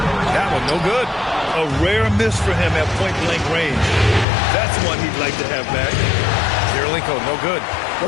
That one no good. A rare miss for him at point-blank range. That's one he'd like to have back. Kirilenko, no good. Well,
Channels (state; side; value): drops out; right; at 4.2 s